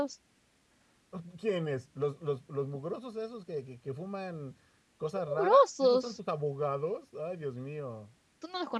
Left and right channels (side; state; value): both; identical; correlation 1.00